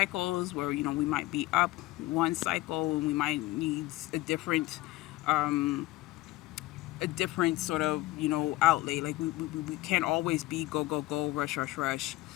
where, we might be up one cycle and we might need a different sort of, outlay. Like we can't always be go, go, go, rush, rush, rush.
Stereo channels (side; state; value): right; quieter; 18.1 dB